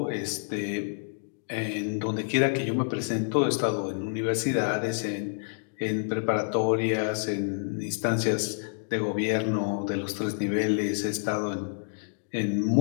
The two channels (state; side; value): silent; right; digital silence